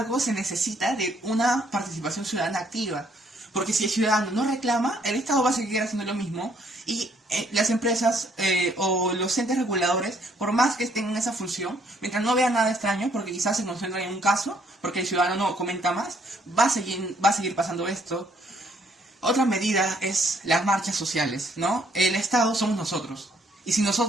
se necesita de una participación ciudadana activa. Porque si el ciudadano no reclama, el Estado va a seguir haciendo lo mismo y las empresas o los entes reguladores, por más que estén en esa función, mientras no vean nada extraño, porque quizás se concentran en un caso, porque el ciudadano no comenta más, va a seguir pasando esto. Otra medida es las marchas sociales, ¿no? El Estado somos nosotros. Y si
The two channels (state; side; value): normal; both; correlation 0.66